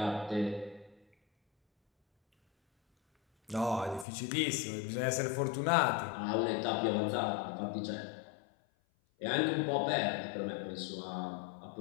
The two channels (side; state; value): right; drops out; at 4.0 s